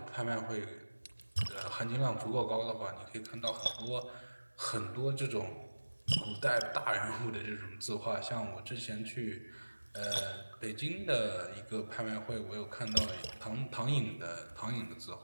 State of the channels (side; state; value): both; inverted; correlation -1.00